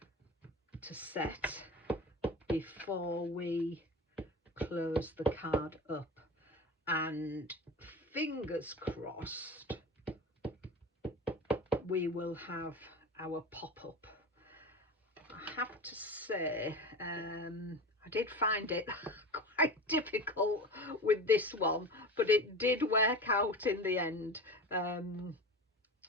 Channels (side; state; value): both; normal; correlation 0.30